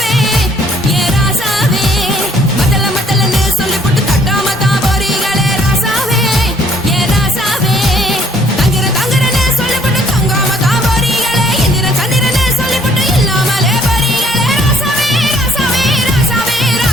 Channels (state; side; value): normal; both; correlation 0.63